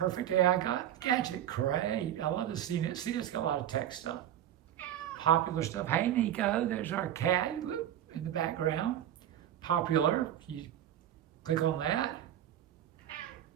AI gadget. Great. I love the CNET. CNET's got a lot of tech stuff. Popular stuff. Hey, Nico, there's our cat in the background. Popular. You click on that.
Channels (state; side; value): quieter; left; 11.2 dB